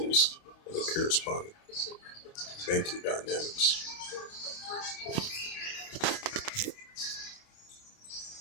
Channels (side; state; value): right; late; 29 ms